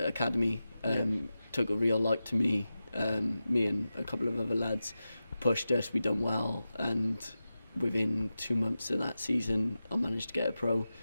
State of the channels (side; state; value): both; inverted; correlation -0.93